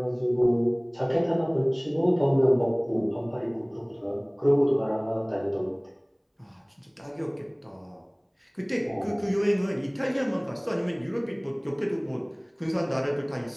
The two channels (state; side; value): identical; both; correlation 1.00